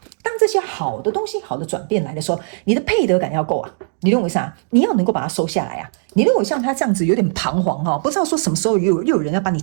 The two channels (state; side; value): silent; left; digital silence